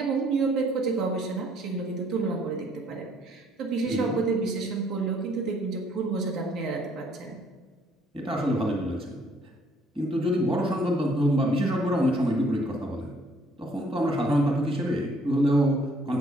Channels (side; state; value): both; normal; correlation 0.63